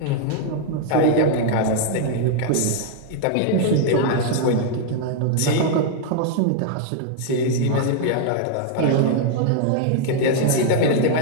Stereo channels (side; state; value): both; different; correlation 0.00